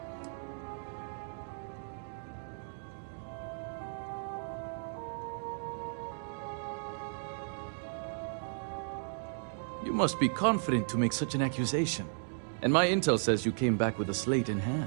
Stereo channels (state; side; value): silent; left; digital silence